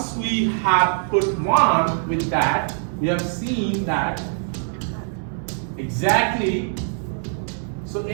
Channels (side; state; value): left; silent; 64 dB below the other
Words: we have put 1 with that, we have seen that exactly, so